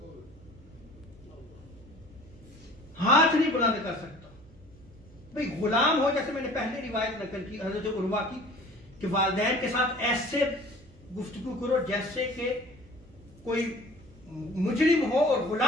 ہاتھ نہیں بلند کر سکتا۔ بھئی غلام ہو، جیسے میں نے پہلے روایت نقل کی حضرت عروہ کی کہ والدین کے ساتھ ایسے گفتگو کرو جیسے کہ کوئی مجرم ہو اور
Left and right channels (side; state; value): right; noise; hum, 24 dB below the sound